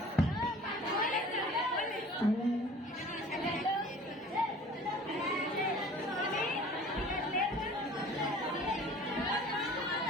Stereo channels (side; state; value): both; normal; correlation 0.46